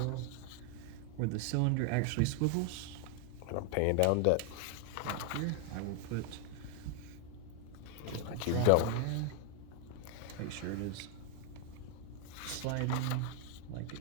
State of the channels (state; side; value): different; both; correlation 0.00